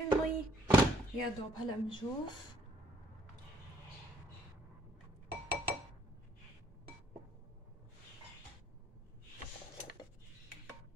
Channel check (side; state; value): both; normal; correlation 0.65